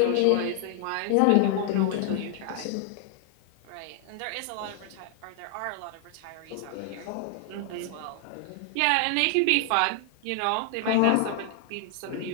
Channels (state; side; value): different; both; correlation 0.00